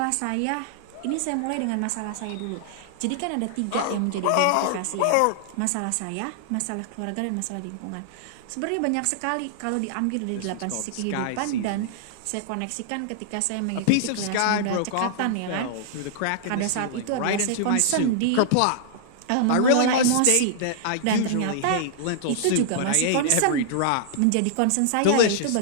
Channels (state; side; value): different; both; correlation -0.01